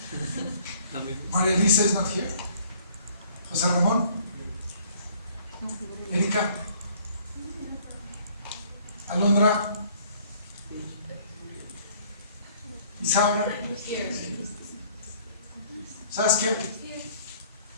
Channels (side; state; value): both; inverted; correlation -0.58